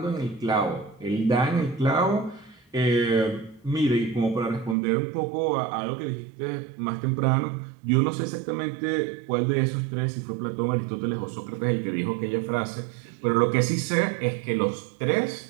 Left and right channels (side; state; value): left; drops out; at 4.8 s